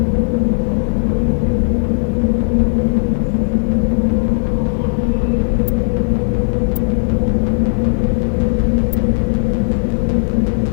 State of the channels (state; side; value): silent; right; 67 dB below the other